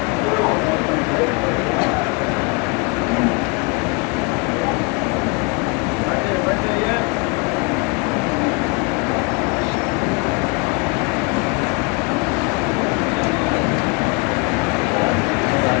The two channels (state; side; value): quieter; right; 31.1 dB